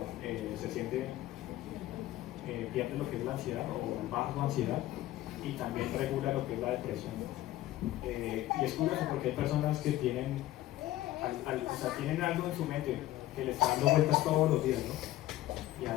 se siente, pierde lo que es la ansiedad o baja su ansiedad y también regula lo que es la depresión. Y es curioso porque hay personas que tienen, tienen algo en su mente que le está dando vueltas todos los días, ¿no?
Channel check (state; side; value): quieter; right; 15.1 dB